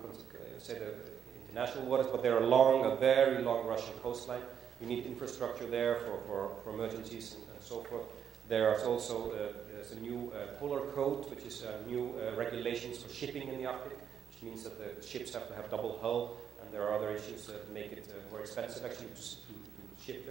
say the international waters, but there are a very long Russian coastline. You need infrastructure there for emergencies and so forth. There's also there's a new polar code, which is new regulations for shipping in the Arctic, which means that the ships have to have double hull. And there are other issues that make it more expensive actually to ship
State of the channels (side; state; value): left; quieter; 8.2 dB